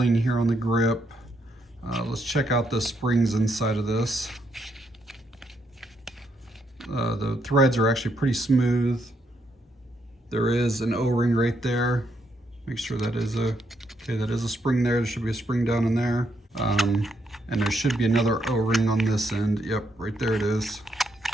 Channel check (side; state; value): both; normal; correlation 0.77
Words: here on the grip. Let's check out the springs inside of this. The threads are actually pretty smooth. There is an O-ring right there. Make sure that is a spring there. There should be a spring down in there. And there should be another O-ring on this end. Yep, right there it is.